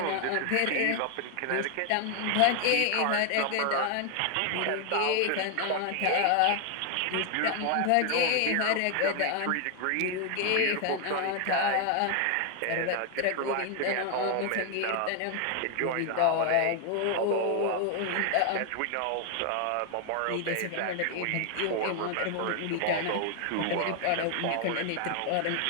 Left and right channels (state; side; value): different; both; correlation 0.00